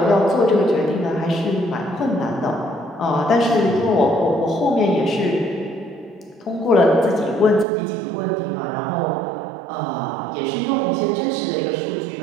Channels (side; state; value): left; drops out; at 7.7 s